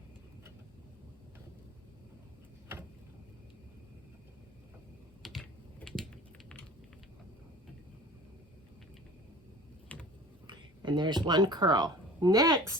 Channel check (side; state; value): both; normal; correlation 0.41